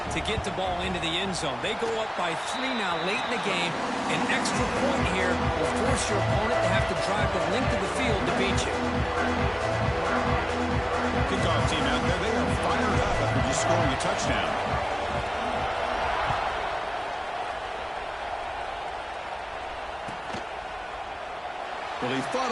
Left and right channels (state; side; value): identical; both; correlation 1.00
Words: to get the ball into the end zone. They go up by 3 now late in the game. An extra point here will force your opponent to have to drive the length of the field to beat you. Kickoff team out there, they are fired up after just scoring a touchdown. Well, he thought